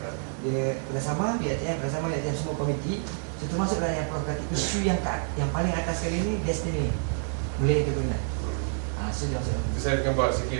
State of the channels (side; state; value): left; silent; 59 dB below the other